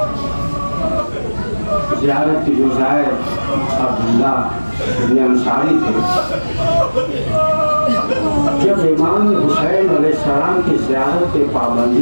ज़ियारत की जो शायर अब्दुल्ला इब्न अंसारी थे, जब इमाम हुसैन अलैहिस्सलाम की ज़ियारत पे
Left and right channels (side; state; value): both; inverted; correlation -1.00